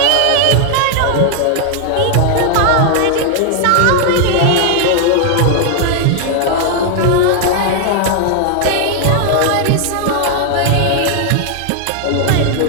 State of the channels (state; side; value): different; both; correlation 0.00